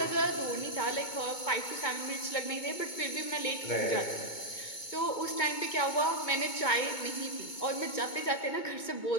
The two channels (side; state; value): right; late; 2.2 ms